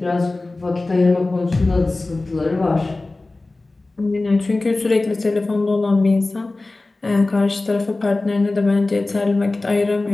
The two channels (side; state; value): right; quieter; 3.1 dB